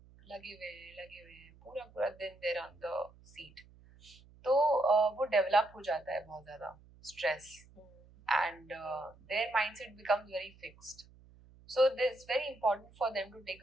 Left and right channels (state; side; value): noise; right; hum, 24 dB below the sound